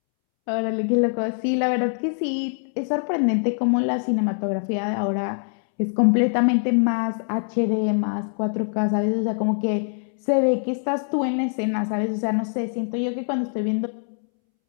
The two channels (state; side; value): silent; right; 63 dB below the other